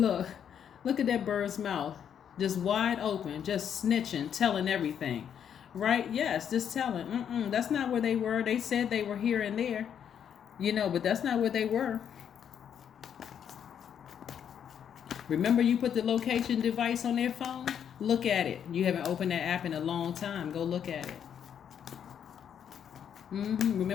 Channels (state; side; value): quieter; right; 8.6 dB